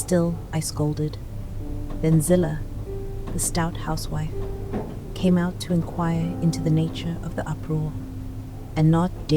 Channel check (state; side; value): identical; both; correlation 1.00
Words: I scolded. Then Zillah, the stout housewife, came out to inquire into the nature of the uproar, and not